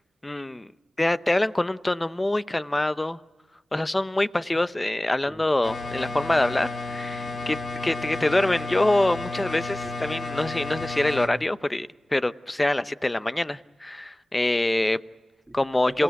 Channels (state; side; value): normal; both; correlation 0.98